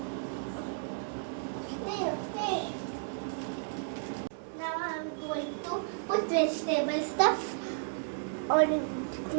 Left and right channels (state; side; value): silent; left; digital silence